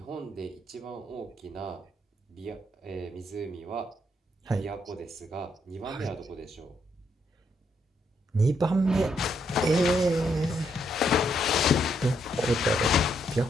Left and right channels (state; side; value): normal; both; correlation 0.75